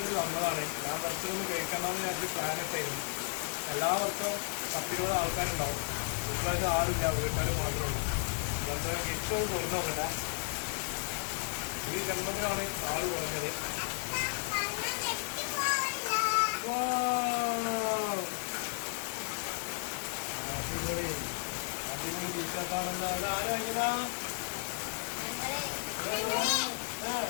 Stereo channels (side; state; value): right; silent; 55 dB below the other